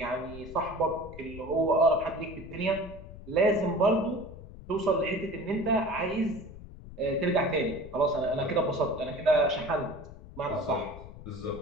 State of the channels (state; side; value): noise; left; rumble, 15 dB below the sound